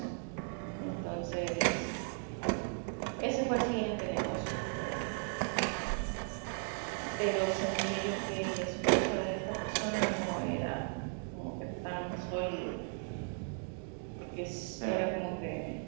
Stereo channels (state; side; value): silent; left; 54 dB below the other